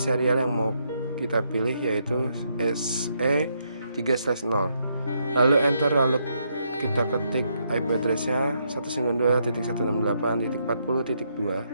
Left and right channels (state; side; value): inverted; both; correlation -0.76